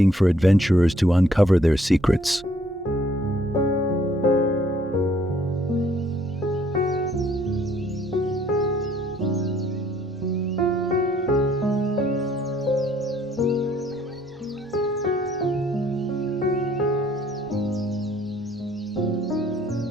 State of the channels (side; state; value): both; normal; correlation 0.63